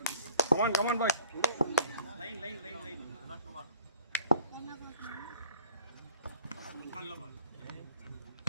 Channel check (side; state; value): both; inverted; correlation -0.50